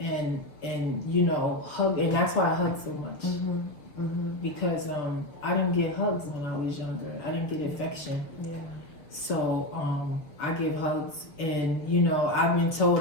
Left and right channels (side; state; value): right; late; 6.5 ms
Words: and you know, hug, and that's why I hug so much, because I didn't get hugs when I was younger. I didn't get affection. So I give hugs, and you know, I've been told